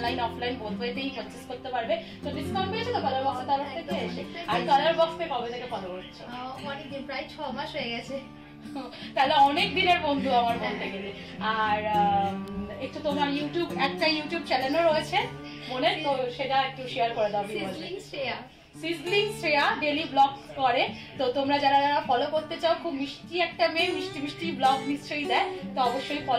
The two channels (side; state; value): both; identical; correlation 1.00